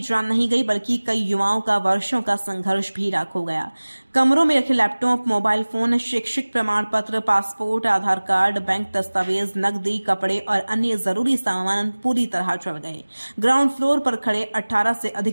जान नहीं गई, बल्कि कई युवाओं का वर्षों का संघर्ष भी राख हो गया। कमरों में रखे लैपटॉप, मोबाइल फोन, शैक्षिक प्रमाण पत्र, पासपोर्ट, आधार कार्ड, बैंक दस्तावेज, नकदी, कपड़े और अन्य जरूरी सामान पूरी तरह जल गए। ग्राउंड फ्लोर पर खड़े 18 से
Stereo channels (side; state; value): both; inverted; correlation -1.00